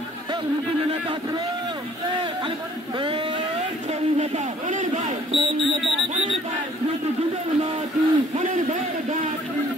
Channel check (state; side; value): normal; both; correlation 0.57